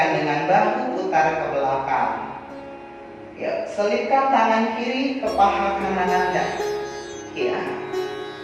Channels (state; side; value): identical; both; correlation 1.00